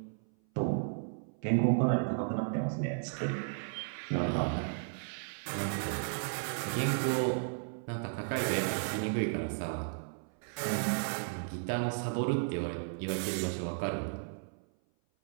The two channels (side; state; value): left; silent; 55 dB below the other